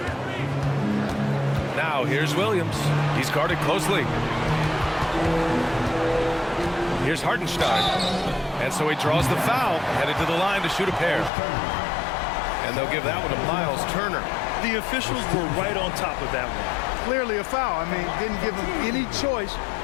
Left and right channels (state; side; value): drops out; right; at 11.3 s